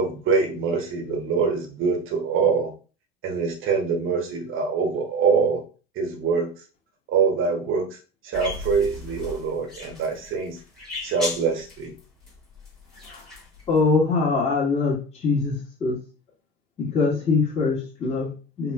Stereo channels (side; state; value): both; normal; correlation 0.29